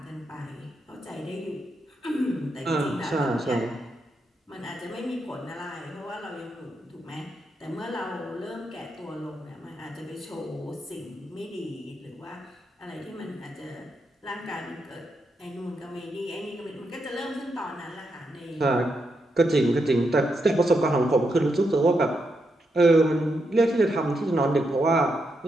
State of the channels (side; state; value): both; normal; correlation 0.82